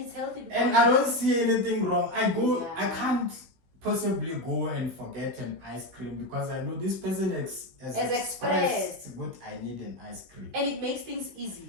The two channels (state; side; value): late; left; 16 ms